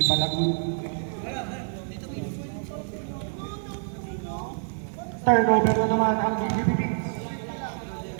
pala good. Turnover na naman ang GGPP.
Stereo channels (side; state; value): left; silent; digital silence